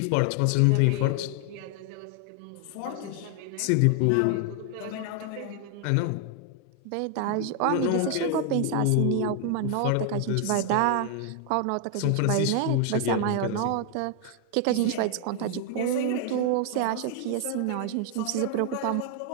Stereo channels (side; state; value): both; different; correlation 0.00